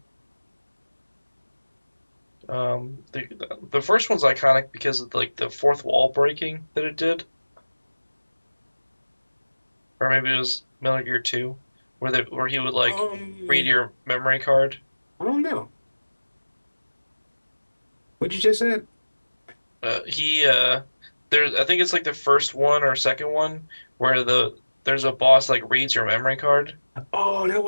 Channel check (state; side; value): inverted; both; correlation -1.00